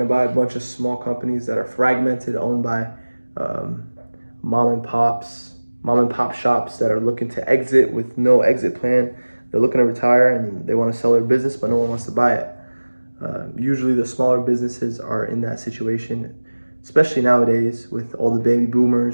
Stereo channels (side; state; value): both; inverted; correlation -1.00